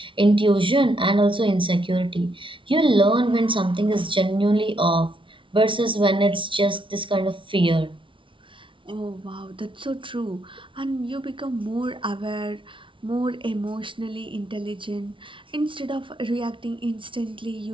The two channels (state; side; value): late; left; 0.25 ms